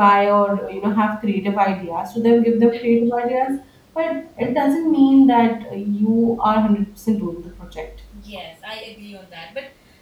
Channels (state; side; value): identical; both; correlation 1.00